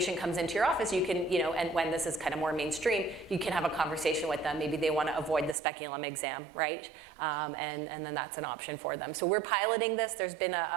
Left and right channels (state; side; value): drops out; left; at 5.6 s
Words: comes into your office, you can, and when this is kind of more mainstream, you can have a conversation with them. Maybe they want to avoid the speculum exam, right? And then that's an option for them. So we're piloting this. There's been